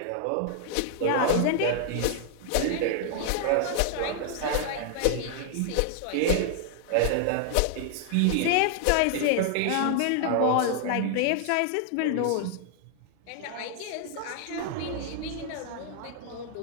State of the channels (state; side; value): different; both; correlation 0.00